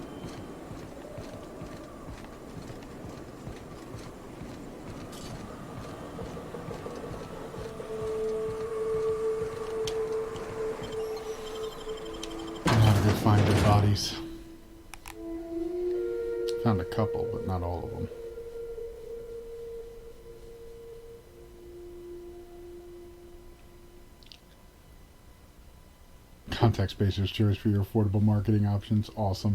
bodies. Found a couple, but not all of them. Contact spacers, cheers for your affordable marketing options.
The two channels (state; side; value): identical; both; correlation 1.00